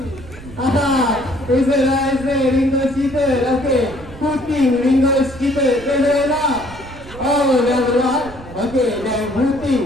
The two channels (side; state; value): right; noise; rumble, 16 dB below the sound